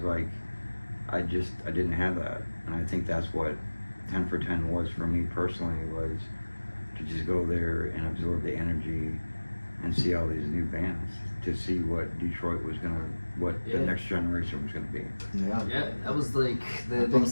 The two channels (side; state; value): both; inverted; correlation -1.00